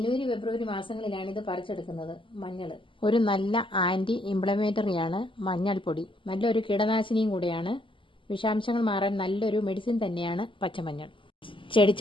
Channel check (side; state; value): right; late; 0.25 ms